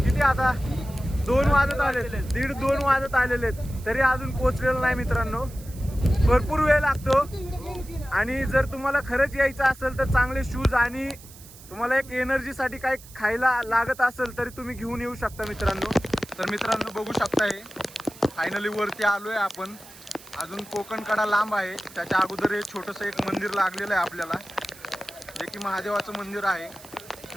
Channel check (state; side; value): noise; right; hiss, 20 dB below the sound